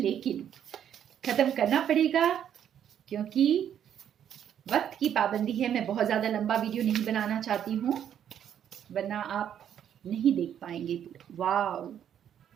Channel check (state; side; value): quieter; left; 9.5 dB